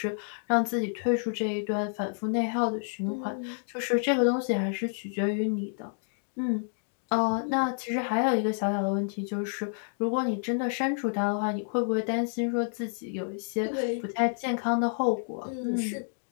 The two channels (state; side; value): silent; right; digital silence